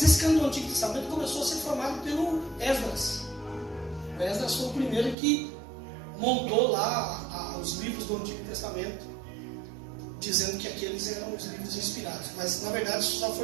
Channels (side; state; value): left; drops out; at 5.2 s